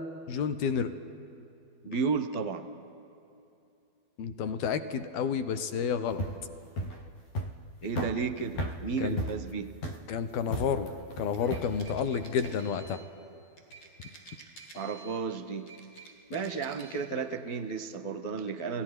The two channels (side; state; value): right; late; 12 ms